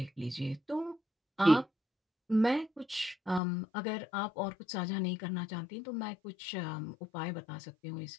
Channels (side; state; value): right; drops out; at 3.4 s